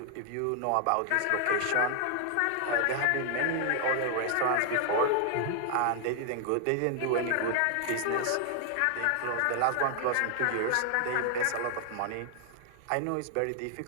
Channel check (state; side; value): different; both; correlation 0.00